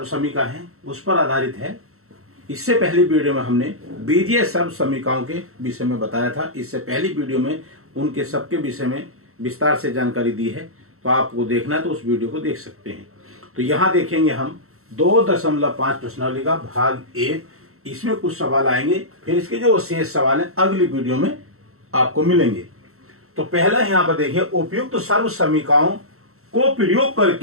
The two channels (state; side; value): late; left; 0.63 ms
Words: समीका है उस पर आधारित है। इससे पहली वीडियो में हमने बीजीय सर्व समीकाओं के विषय में बताया था। इससे पहली वीडियो में उनके सबके विषय में विस्तार से जानकारी दी है, तो आपको देखना है तो उस वीडियो को देख सकते हैं। तो यहाँ देखेंगे हम 2.5 प्रश्नावली का भाग 1। इसमें कुछ सवाल आएंगे, फिर इसके जो शेष सवाल हैं अगली वीडियो में आपको मिलेंगे। तो पहला यहाँ पर देखिए, उपयुक्त सर्व समीकाओं को प्रयोग